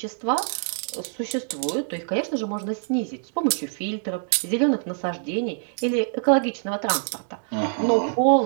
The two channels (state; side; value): silent; left; digital silence